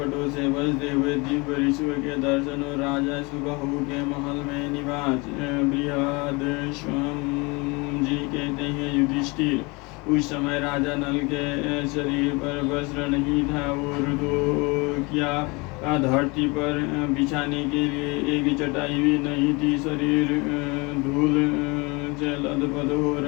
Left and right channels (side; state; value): right; quieter; 27.0 dB